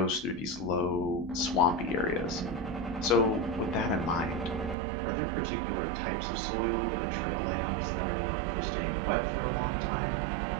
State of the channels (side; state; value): left; drops out; at 4.8 s